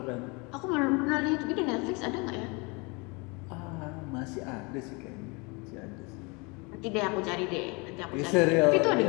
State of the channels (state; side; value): quieter; right; 29.0 dB